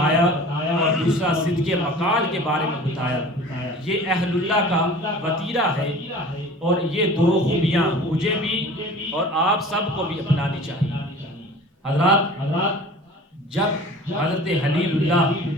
اور دوسرا صدق مقال کے بارے میں بتایا۔ یہ اہل اللہ کا وتیرہ ہے اور یہ 2 خوبیاں مجھے بھی اور آپ سب کو بھی اپنانی چاہیے۔ حضرات جب حضرت خلیل اللہ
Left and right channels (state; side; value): normal; both; correlation 0.42